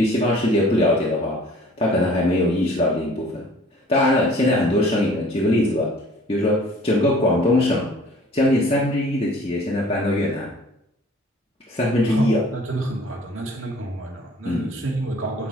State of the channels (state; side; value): normal; both; correlation 0.51